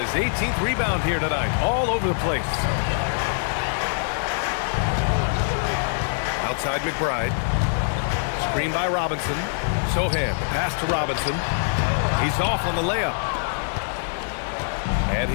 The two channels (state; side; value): silent; right; digital silence